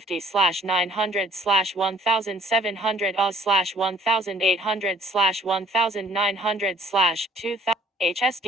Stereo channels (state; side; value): normal; both; correlation 0.57